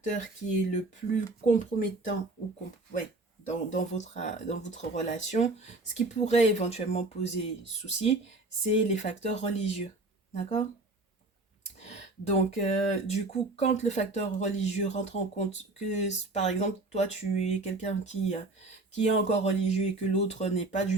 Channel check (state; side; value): quieter; left; 3.1 dB